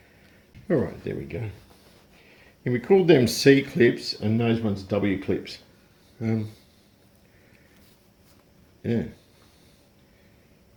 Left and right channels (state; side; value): identical; both; correlation 1.00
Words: All right, there we go. And we called them C clips and those ones W clips. Yeah.